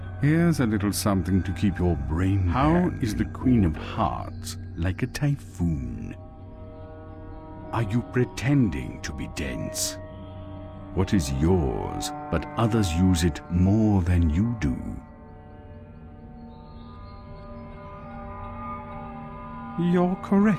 Here's a little something to keep your brain. How is the Queen of Hearts like a typhoon? Are you pretending to be dense? What is yours, but others use it more than you do? You're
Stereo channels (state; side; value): identical; both; correlation 1.00